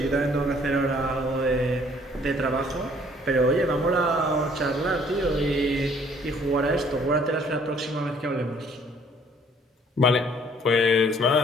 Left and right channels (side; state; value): both; normal; correlation 0.59